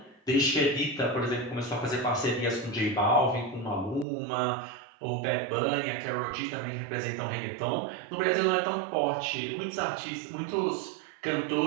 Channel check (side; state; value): left; drops out; at 4.0 s